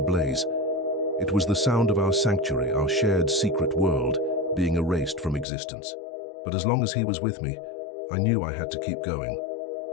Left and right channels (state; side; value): drops out; right; at 5.5 s